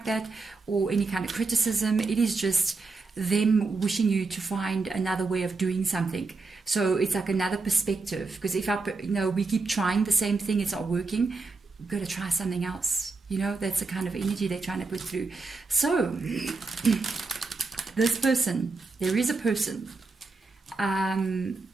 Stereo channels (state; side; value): quieter; left; 3.9 dB